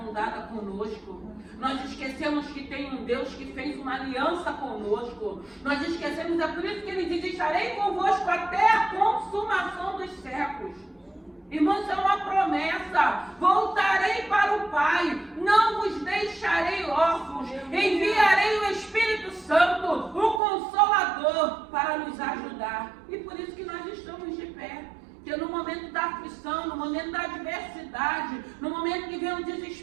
dada conosco. Nós esquecemos que tem um Deus que fez uma aliança conosco. Nós esquecemos, é por isso que Ele diz: estarei convosco até a consumação dos séculos. Irmãos, é uma promessa. Voltarei para o Pai, não vos deixarei órfãos, enviarei o Espírito Santo, o Consolador, para nos ajudar. E por isso que nós estamos de pé. Porque no momento da aflição, no momento da adversidade, no momento que vem o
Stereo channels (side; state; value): left; drops out; at 20.4 s